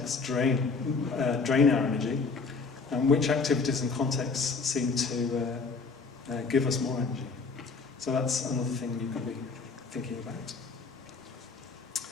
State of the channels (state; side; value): quieter; right; 4.5 dB